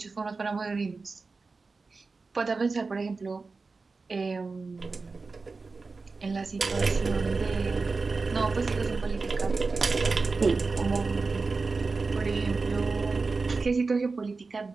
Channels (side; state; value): left; quieter; 4.1 dB